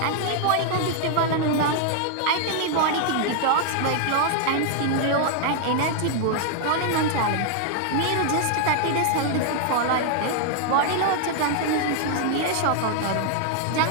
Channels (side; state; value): both; different; correlation -0.01